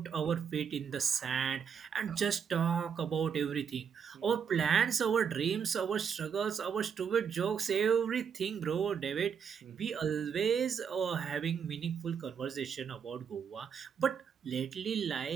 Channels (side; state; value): left; quieter; 7.1 dB